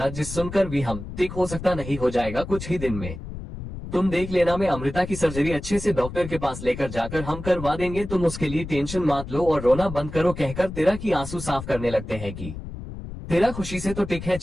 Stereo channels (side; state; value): left; noise; rumble, 10 dB below the sound